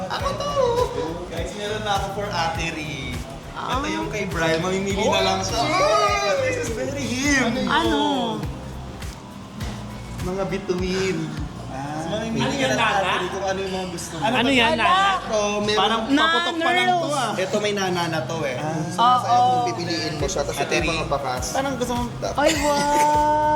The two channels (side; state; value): both; identical; correlation 1.00